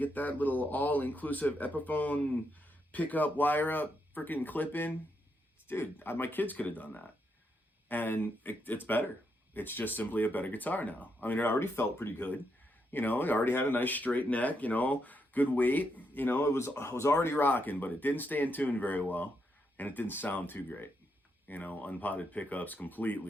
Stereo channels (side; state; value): both; normal; correlation 0.80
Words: that little all-inclusive Epiphone pickup, wire up, freaking clip in. Dude, my kids could have done that, and it's better. It's just simply a better guitar now. I mean, it already felt pretty good. It already had a nice straight neck, good weight. It was already rocking, but it didn't stay in tune very well, and it didn't sound too great. Unpotted pickups,